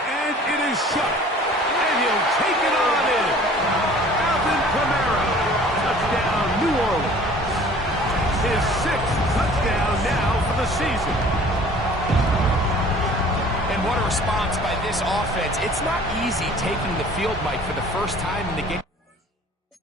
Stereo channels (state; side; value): normal; both; correlation 0.49